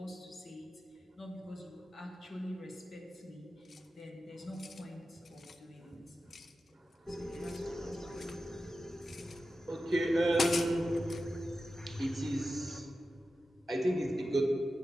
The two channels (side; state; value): both; normal; correlation 0.92